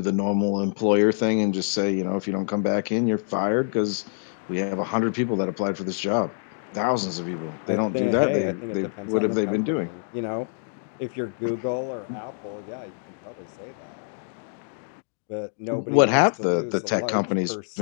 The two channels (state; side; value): silent; right; digital silence